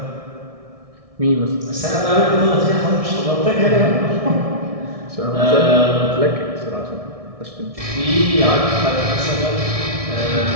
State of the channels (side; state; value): left; late; 1.6 ms